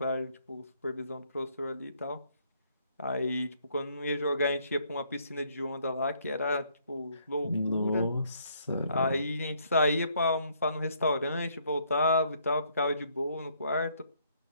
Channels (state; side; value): inverted; both; correlation -0.68